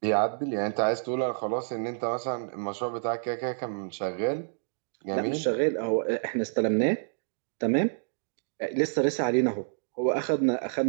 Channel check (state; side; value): silent; left; digital silence